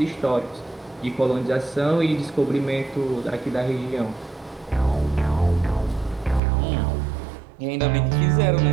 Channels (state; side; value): drops out; left; at 6.4 s